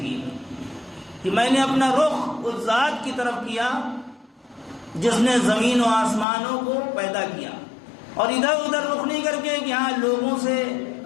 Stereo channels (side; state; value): right; drops out; at 6.2 s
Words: کہ میں نے اپنا رخ اس ذات کی طرف کیا جس نے زمین و آسمانوں کو پیدا کیا، اور ادھر ادھر رخ نہیں کر کے کہ ہاں لوگوں سے